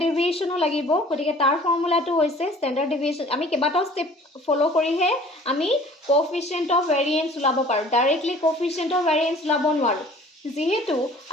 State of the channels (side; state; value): both; normal; correlation 0.49